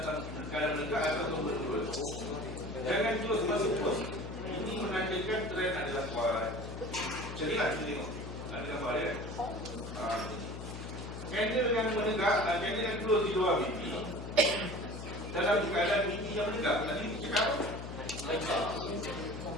menegak ataupun menurun, jangan terus masuk terus. Ini menandakan trend adalah kuat. Jadilah kita tengok. Ada gambar dia. Candle yang menegak, candle yang close di luar BB dalam keadaan BB yang menegak. Tadi kita cakap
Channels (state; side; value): noise; left; hum, 9 dB below the sound